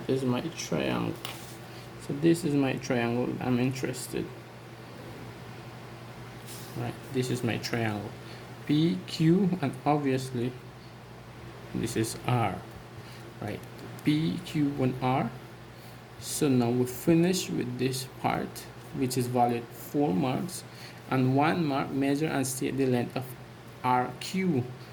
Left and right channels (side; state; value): both; identical; correlation 1.00